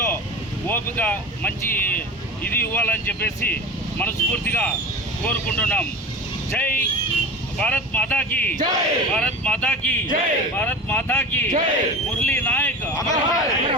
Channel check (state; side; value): normal; both; correlation 0.32